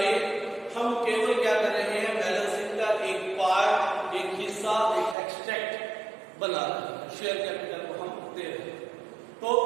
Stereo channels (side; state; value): left; drops out; at 5.2 s